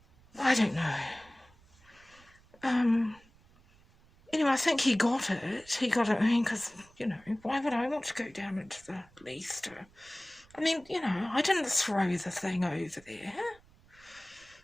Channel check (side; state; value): right; noise; rumble, 28 dB below the sound